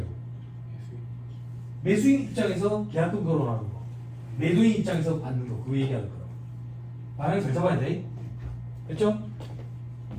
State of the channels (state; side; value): identical; both; correlation 1.00